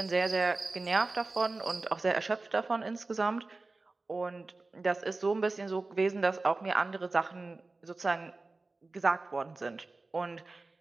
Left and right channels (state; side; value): quieter; left; 3.4 dB